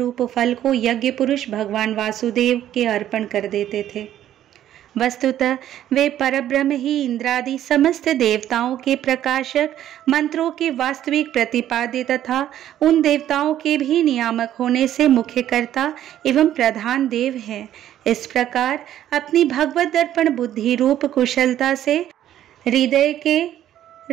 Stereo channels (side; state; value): left; quieter; 11.7 dB